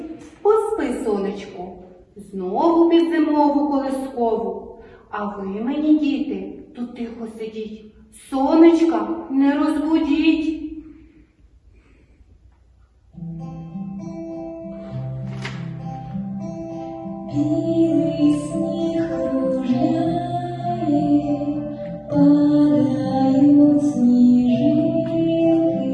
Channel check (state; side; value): identical; both; correlation 1.00